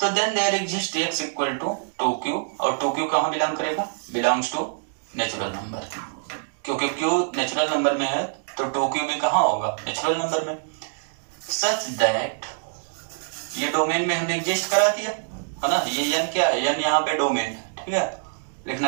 then there exist x equal to 2q, और 2q कहाँ बिलोंग करेगा, बिलोंग्स टू नेचुरल नंबर, क्योंकि q नेचुरल नंबर में है तो 2q भी कहाँ होगा, नेचुरल नंबर में। सच दैट, ये डोमेन में हमने एग्जिस्ट करा दिया है ना, ये n क्या है, n यहाँ पे डोमेन, ठीक है,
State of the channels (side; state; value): left; silent; digital silence